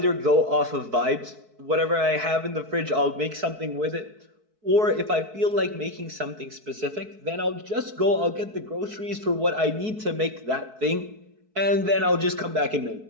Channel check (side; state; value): left; late; 4.6 ms